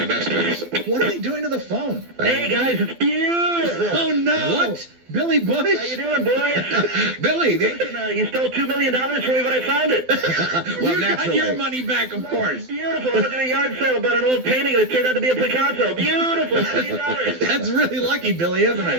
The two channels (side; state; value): left; late; 12 ms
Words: What are they doing to the phone? Hey, guys, it's beautiful. Oh, no. What? Billy Bush? How you doing, boys? Billy, Listen, you stole $2 million from me when I found it. Well, you got naturally. your money back, of course. Beautiful. I went to a yard sale about an old painting, and it turned out to be a Picasso. Beautiful. $1 million. That's really lucky, Billy, isn't My